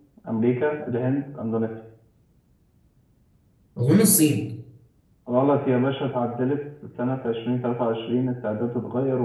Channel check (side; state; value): both; identical; correlation 1.00